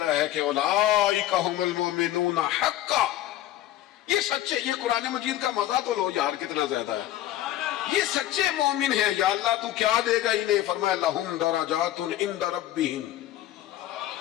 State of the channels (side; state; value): right; quieter; 13.7 dB